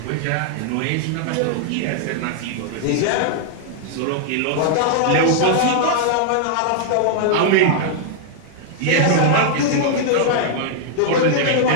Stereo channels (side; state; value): both; different; correlation -0.01